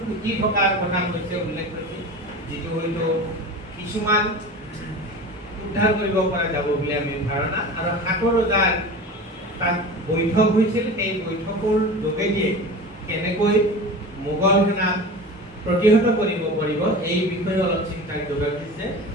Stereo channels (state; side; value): normal; both; correlation 0.33